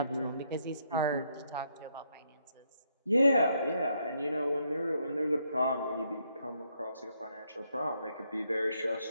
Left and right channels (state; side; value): inverted; both; correlation -0.75